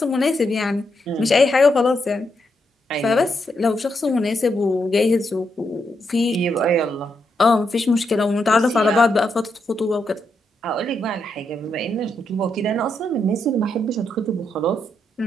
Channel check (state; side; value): normal; both; correlation 0.81